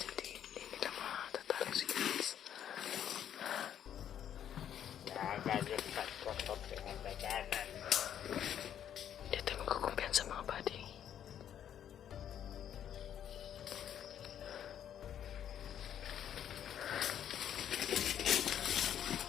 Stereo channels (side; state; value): right; quieter; 9.8 dB